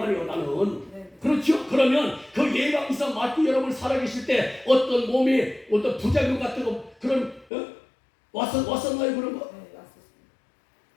나는. 네. 그렇죠? 그러면 그 예방주사 맞고 여러분 살아계실 때 어떤 몸에 어떤 부작용 같은 거 그런 왔었나요 그런 거? 네, 왔었어.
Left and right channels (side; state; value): right; drops out; at 7.5 s